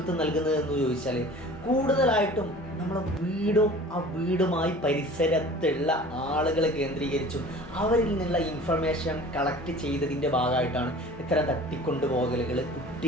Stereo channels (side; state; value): both; normal; correlation 0.44